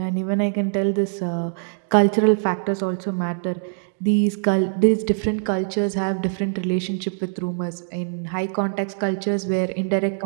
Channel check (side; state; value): left; silent; digital silence